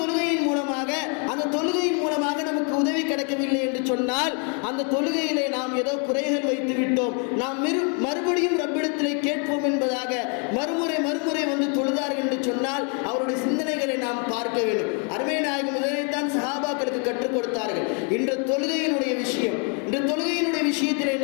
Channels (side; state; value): right; quieter; 38.5 dB